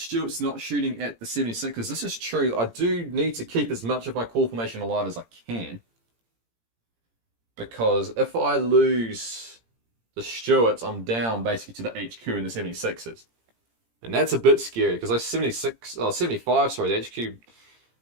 not shooting at the 76ers, this is true. I do need to keep as much of my core formation alive as I can. Because if I lose the Stuarts, I'm down basically to the HQ and the 76ers. And that's a bit scary because those 75, sorry, the HQ, if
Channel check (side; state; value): left; late; 17 ms